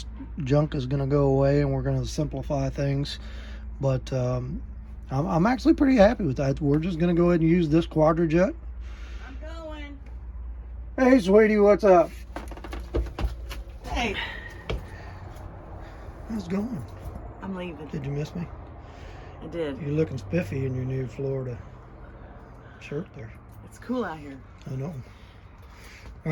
junk is going to go away and we're going to simplify things. But I'm actually pretty happy with that. We're just going to go ahead and use this quadra-jet. I'm going. Hey, sweetie, what's up? Hey. How's it going? I'm leaving. Did you miss me? I did. You're looking spiffy in your new Florida shirt there. It's cool out here. I know. All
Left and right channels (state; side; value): identical; both; correlation 1.00